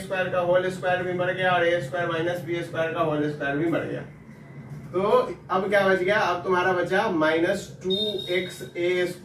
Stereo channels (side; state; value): both; identical; correlation 1.00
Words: का whole square भी मर गया और ए स्क्वायर माइनस बी स्क्वायर का होल स्क्वायर भी मर गया। तो अब क्या बच गया, अब तुम्हारा बचा minus 2x A